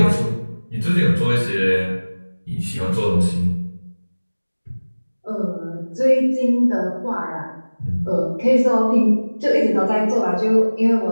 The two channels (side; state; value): both; inverted; correlation -1.00